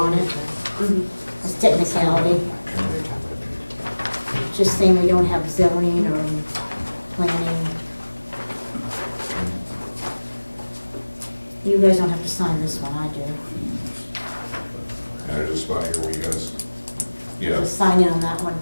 it. It's technicality. Just saying we don't have zoning or planning. You guys don't have to sign this one, I do. and there's a spot here where you guys, yeah, Just sign in on that one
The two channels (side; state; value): both; inverted; correlation -1.00